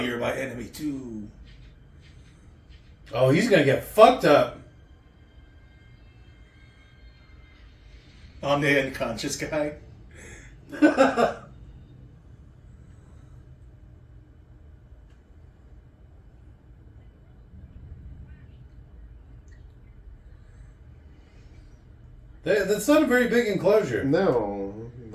my enemy too. Oh, he's gonna get fucked up. I'm the unconscious guy. That's not a very big enclosure. No,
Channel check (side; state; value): both; identical; correlation 1.00